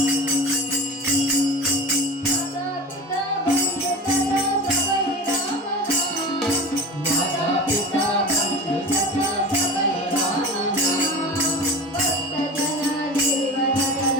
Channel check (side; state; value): both; normal; correlation 0.33